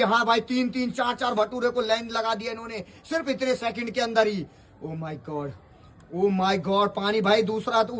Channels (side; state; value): both; identical; correlation 1.00